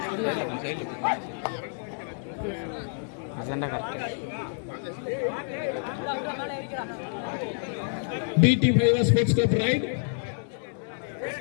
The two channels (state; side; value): silent; right; digital silence